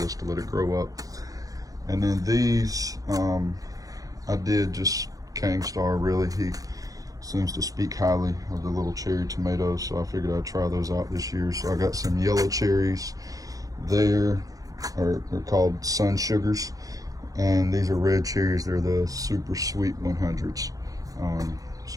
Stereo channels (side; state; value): left; late; 0.17 ms